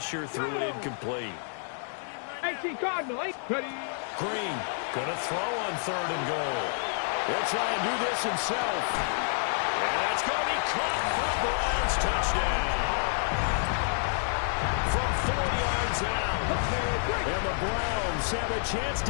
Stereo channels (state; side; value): silent; right; digital silence